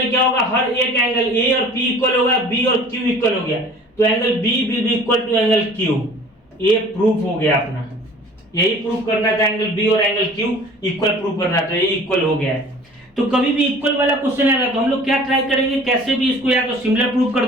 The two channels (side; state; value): both; normal; correlation 0.47